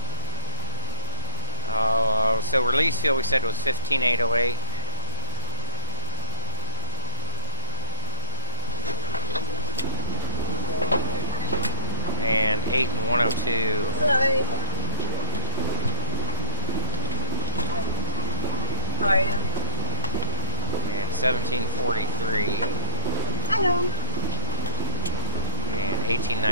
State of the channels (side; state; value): both; inverted; correlation -0.85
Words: So release fuel we said was 15,808. And 8 and 102. Hello. How are you? And 1743. Hello. And